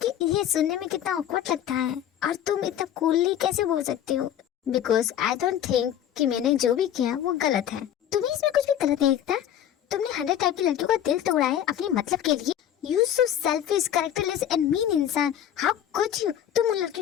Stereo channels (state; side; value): quieter; right; 10.5 dB